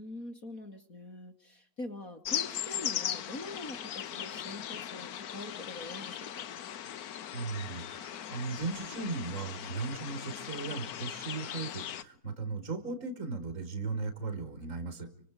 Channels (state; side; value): late; right; 4.5 ms